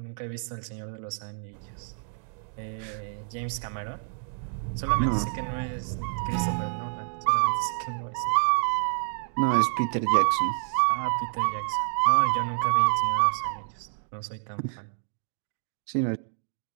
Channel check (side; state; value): left; silent; 57 dB below the other